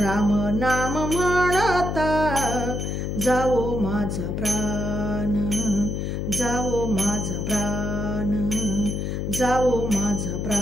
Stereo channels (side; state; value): left; noise; hum, 2 dB below the sound